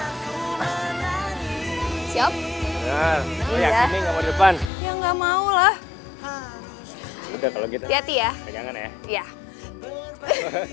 Siap? Nah, lo Iya. yakin nih nggak mau di depan? Ya nggak mau lah. Udah kalau gitu. Hati-hati ya. Pegangan ya. Iya.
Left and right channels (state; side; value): drops out; right; at 4.7 s